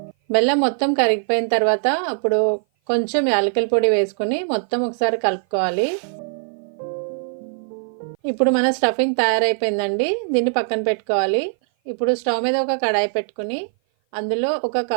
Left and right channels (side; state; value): left; silent; 56 dB below the other